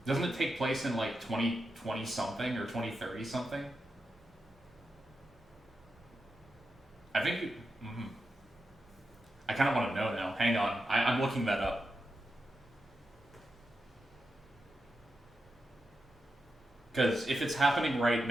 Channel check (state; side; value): normal; both; correlation 0.88